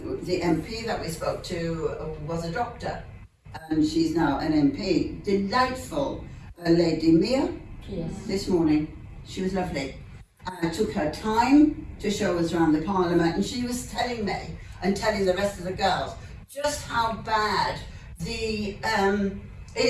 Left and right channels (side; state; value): both; identical; correlation 1.00